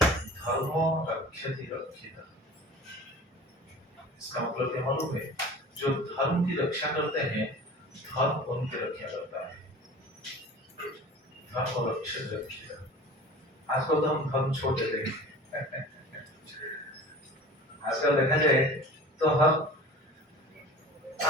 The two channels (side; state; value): both; normal; correlation 0.40